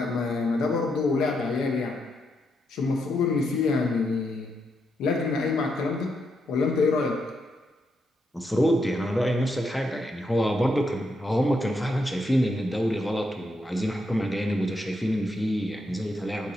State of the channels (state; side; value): normal; both; correlation 0.81